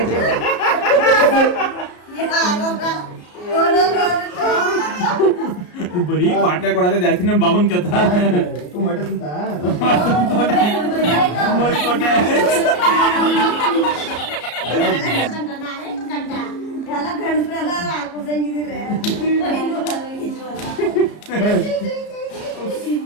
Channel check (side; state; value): right; late; 34 ms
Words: ಬರೀ ಪಾಟ್ಲೆ ಕೊಡೋದೇ ಜಾಸ್ತಿ ನಮ್ Baban ಕಥ